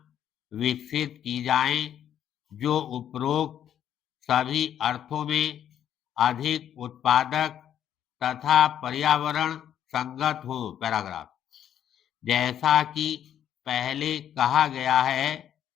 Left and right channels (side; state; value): right; quieter; 10.0 dB